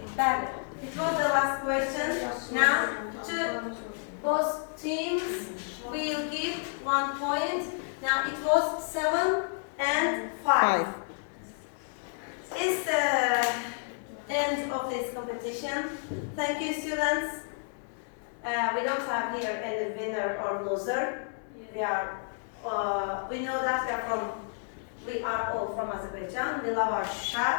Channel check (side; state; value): right; silent; 58 dB below the other